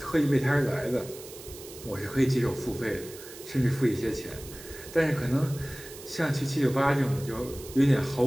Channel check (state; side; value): noise; right; hiss, 16 dB below the sound